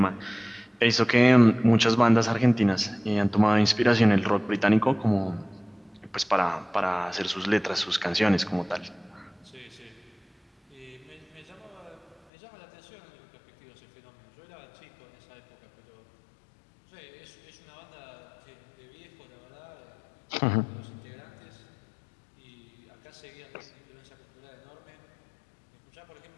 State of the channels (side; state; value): right; drops out; at 12.2 s